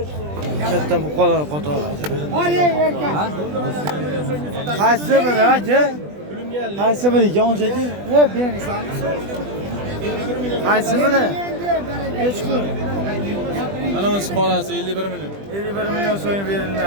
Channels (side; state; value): left; late; 20 ms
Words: Katta buqalar qatori aka. Qaysi biri aka? Qaysi biri yonchaki? Bering. Qaysi biri? Hech pul. Ana o'z xolasi 51 million. 51 million so'm